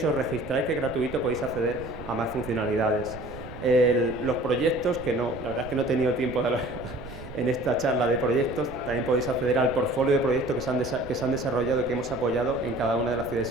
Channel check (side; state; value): right; noise; rumble, 14 dB below the sound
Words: y os registráis, que es gratuito, podéis acceder a más funcionalidades. Los proyectos, la verdad es que no he tenido tiempo de hablar en esta charla de proyectos, también podéis acceder al portfolio de proyectos que se han desarrollado y que hemos apoyado en cada una de las ciudades